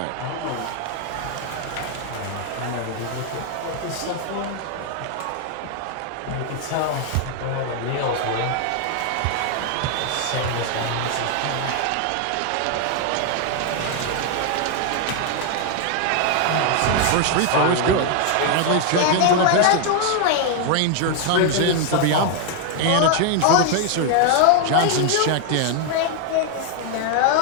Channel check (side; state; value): both; different; correlation 0.00